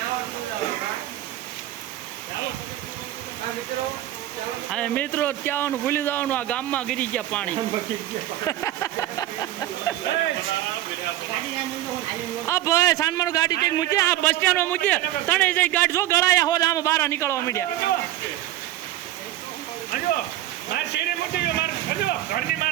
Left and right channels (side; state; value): left; quieter; 14.1 dB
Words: અને મિત્રો ત્યાં ભૂલી જવાનું આ ગામમાં ગીરી ગયા પાણી આ ભાઈ સાનમાનું ગાડી કઈક મૂકે આ બસ સ્ટેન્ડમાં મૂકે તણે જઈ ગાડી જો ગળાયા હોત આમાં બહાર નીકળવા માંડ્યા